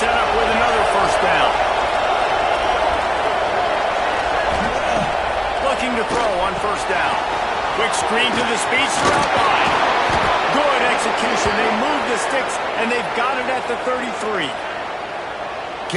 up with another first down. Looking to throw on first down. Quick screen to the speedster out wide. Good execution. They move the sticks, and they've got it at the 33.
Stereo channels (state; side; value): identical; both; correlation 1.00